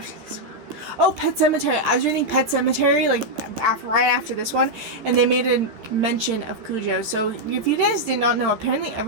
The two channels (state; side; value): late; left; 14 ms